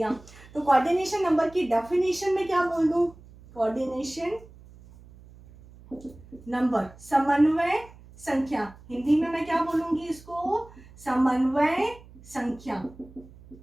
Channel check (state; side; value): noise; right; hum, 22 dB below the sound